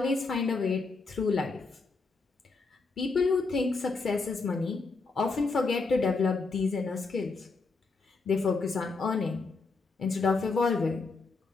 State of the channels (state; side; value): quieter; right; 4.1 dB